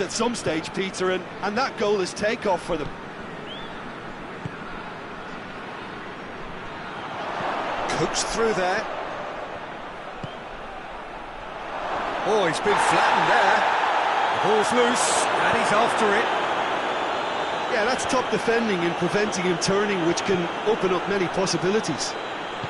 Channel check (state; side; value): identical; both; correlation 1.00